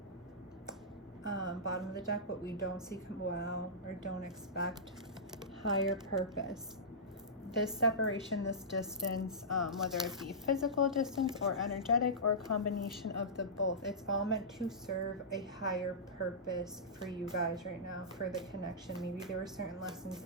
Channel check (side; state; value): both; normal; correlation -0.17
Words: Bottom of the deck, what we don't see, wow, or don't expect, higher purpose. This separation, this distance, whether it be physical distance or energetic or a combination of the both, it's all meant to serve a higher purpose for you guys right now, for the connection. Maybe there were certain lessons